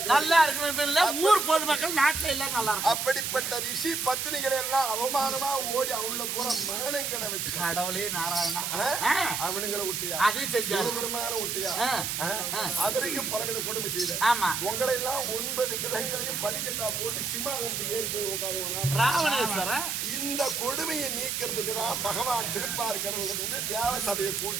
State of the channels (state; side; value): noise; right; hiss, 2 dB below the sound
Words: ஊர் பொதுமக்கள் நாட்டுல எல்லாம் நல்லா இருக்கும். அப்படிப்பட்ட ரிஷி பத்தினிகளை எல்லாம் அவமானமா ஓடி அவங்கள பூரா மரணங்களை வச்சு கடவுளே நாராயணா அவனுங்களை விட்டியா? அதையும் செஞ்சாங்க. விட்டியா? அதற்கும் பலவித கொடுமை செய்த. உங்களை எல்லாம் 9 கிரகங்களையும் படிக்கட்டா போட்டு சிம்மாசனத்துக்கு ஏறி போய் உட்காருவாங்க ராவணேஸ்வர. இந்த கொடுமையை நீக்கிறதுக்கு தான் பகவான் திருப்பார் கடவுள் வந்து தேவ சபையை